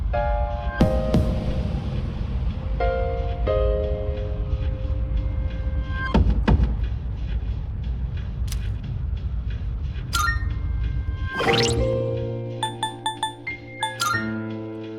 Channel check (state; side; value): identical; both; correlation 1.00